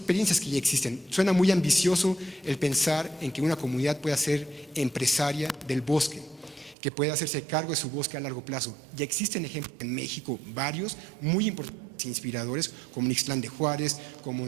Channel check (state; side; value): drops out; left; at 6.8 s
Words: que ya existen. Suena muy ambicioso el pensar en que una comunidad pueda ser empresaria del bosque, que pueda hacerse cargo de su bosque a largo plazo. Ya existen ejemplos en México, varios, muy importantes e inspiradores, como en Ixtlán de Juárez, como